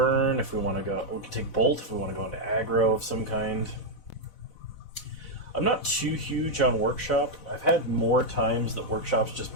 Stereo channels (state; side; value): late; right; 4.0 ms